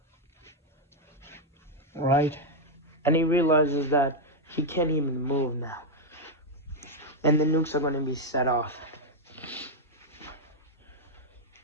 Right? And he realizes that he can't even move now. And the nukes are gonna be set off.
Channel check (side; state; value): both; normal; correlation 0.01